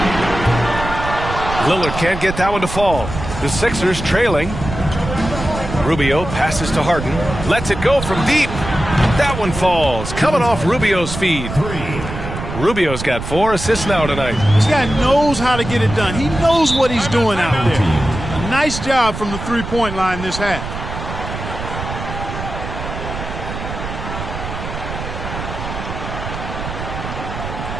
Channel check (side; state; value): right; noise; rumble, 7 dB below the sound